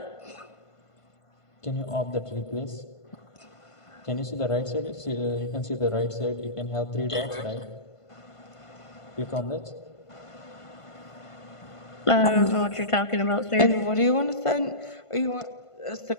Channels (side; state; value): right; late; 1.5 ms